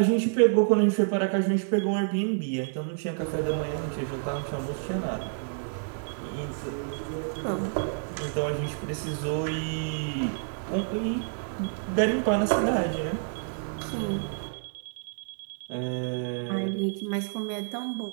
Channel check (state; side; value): silent; left; digital silence